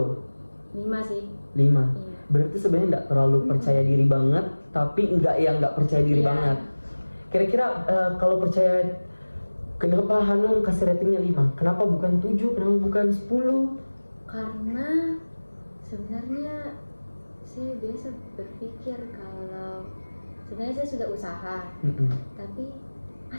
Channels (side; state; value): both; inverted; correlation -1.00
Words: 5 sih. 5. Iya. Berarti sebenarnya nggak terlalu percaya diri banget, tapi nggak percaya diri Iya. banget. Kira-kira kalau percaya, kenapa Hanum kasih ratingnya 5? Kenapa bukan 7? Kenapa bukan 10? Karena sebenarnya saya biasa berpikir kalau sebenarnya saya sudah usaha, tapi